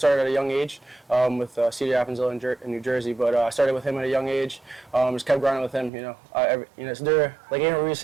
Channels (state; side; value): drops out; left; at 5.9 s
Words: at a young age with C.D. Appenzell in New Jersey, but I started with him at a young age. Just kept grinding with him. It's there. Like Andrew Reese